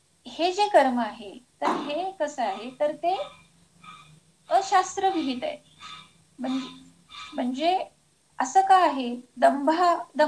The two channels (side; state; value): both; identical; correlation 1.00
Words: हे जे कर्म आहे तर हे कसं आहे, तर ते अशास्त्रविहित आहे. म्हणजे असं का आहे?